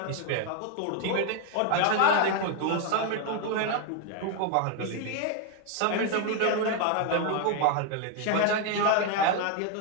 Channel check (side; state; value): both; different; correlation 0.01